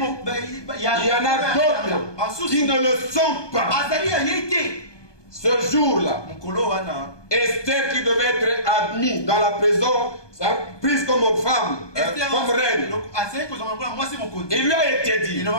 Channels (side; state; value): right; late; 1.2 ms